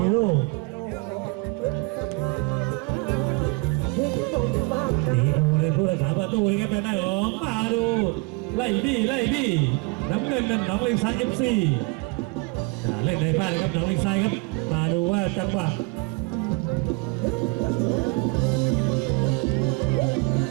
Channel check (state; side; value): quieter; left; 28.0 dB